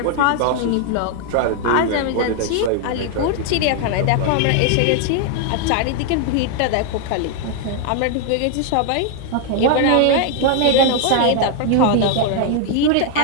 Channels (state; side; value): different; both; correlation 0.00